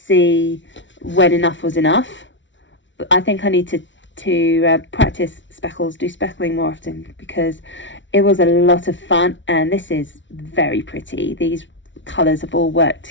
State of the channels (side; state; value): right; late; 0.55 ms